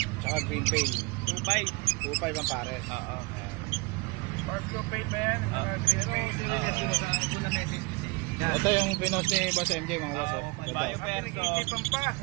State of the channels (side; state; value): left; quieter; 25.9 dB